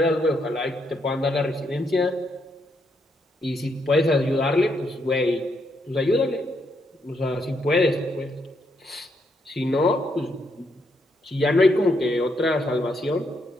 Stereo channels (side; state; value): both; normal; correlation 0.77